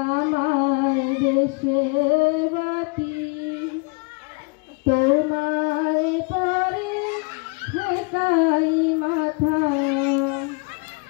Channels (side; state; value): right; quieter; 31.2 dB